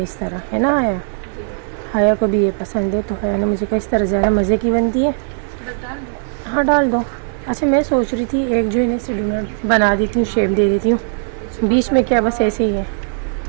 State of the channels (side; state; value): left; silent; 67 dB below the other